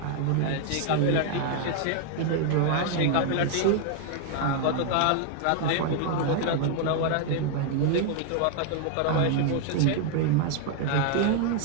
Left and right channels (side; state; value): both; different; correlation 0.00